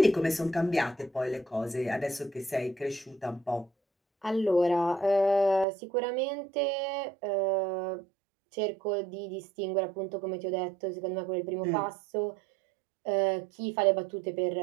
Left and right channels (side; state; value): left; drops out; at 5.7 s